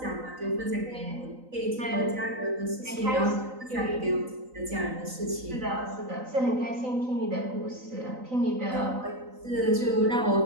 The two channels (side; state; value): left; late; 3.9 ms